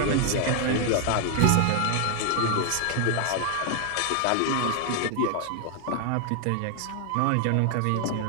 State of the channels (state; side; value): different; both; correlation 0.00